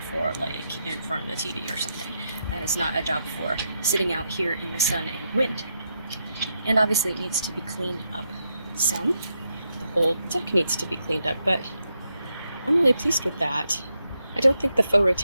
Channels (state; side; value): inverted; both; correlation -0.82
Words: for like in front of the TV or something. That is not a job for sitting out here in the sun and wind. And obviously it needs to be cleaned up some. The whole deck needs to be cleaned up, but I'm really pleased with that. I don't think the faux